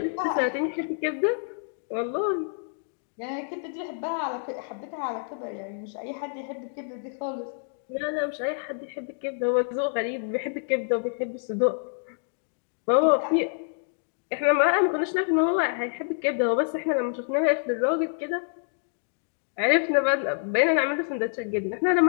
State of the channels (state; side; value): silent; right; digital silence